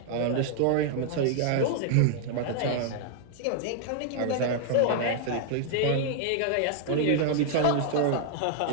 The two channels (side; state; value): both; different; correlation -0.01